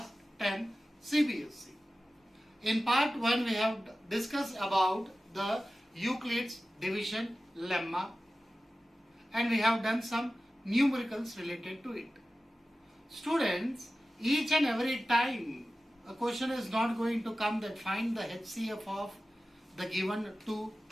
10 CBSE. In part 1 we have discussed about the Euclid's division lemma and we have done some numericals related to it. Students, each and every time a question is not going to come that find the HCF of the given two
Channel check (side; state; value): both; normal; correlation 0.95